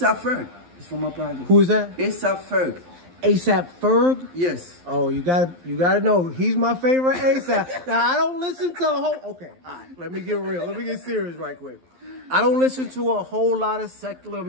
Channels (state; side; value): late; left; 12 ms